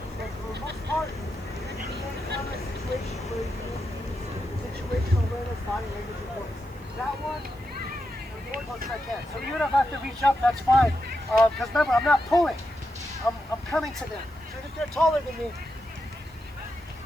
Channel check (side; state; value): right; noise; hiss, 28 dB below the sound